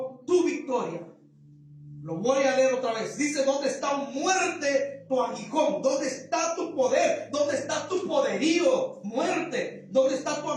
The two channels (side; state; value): both; identical; correlation 1.00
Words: tu victoria? Lo voy a leer otra vez. Dice, ¿dónde está, oh muerte, tu aguijón? ¿Dónde está tu poder? ¿Dónde está tu poderío, muerte? ¿Dónde está tu